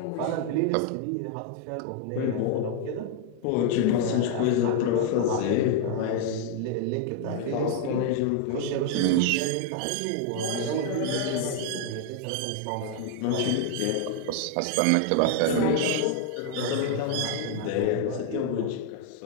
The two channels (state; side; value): different; both; correlation 0.00